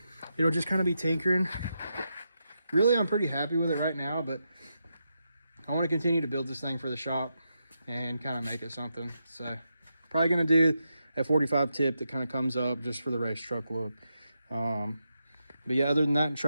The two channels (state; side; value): inverted; both; correlation -0.85